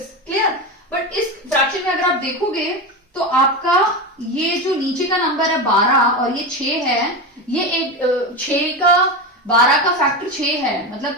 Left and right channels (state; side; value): normal; both; correlation 0.19